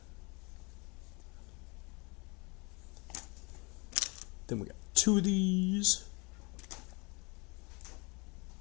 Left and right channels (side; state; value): right; quieter; 28.9 dB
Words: Then we got 2 of these.